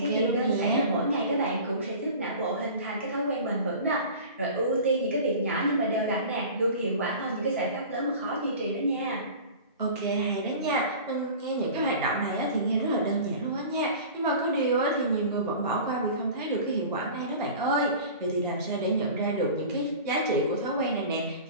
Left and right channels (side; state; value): both; inverted; correlation -0.38